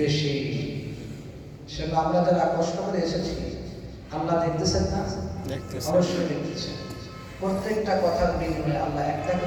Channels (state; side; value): identical; both; correlation 1.00